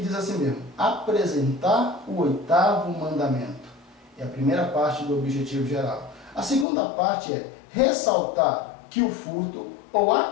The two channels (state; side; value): drops out; right; at 6.7 s